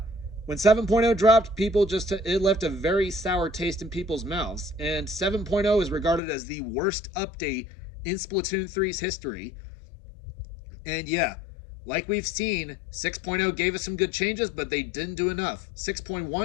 When 7.0 dropped, it left a very sour taste in people's mouths, and 7.0 is regarded as the worst update in Splatoon 3's history. And yeah, like we've seen, 6.0 gave us some good changes, but they didn't do enough.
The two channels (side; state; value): right; drops out; at 6.2 s